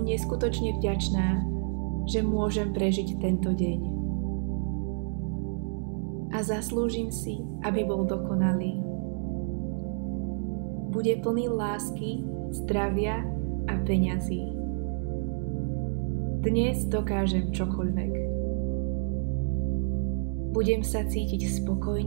neskutočne vďačná, že môžem prežiť tento deň. A zaslúžim si, aby bol dokonalý. Bude plný lásky, zdravia a peňazí. Dnes dokážem čokoľvek. Budem sa cítiť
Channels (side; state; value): left; silent; digital silence